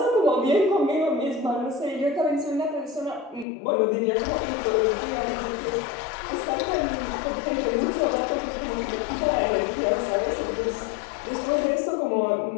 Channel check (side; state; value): right; drops out; at 3.5 s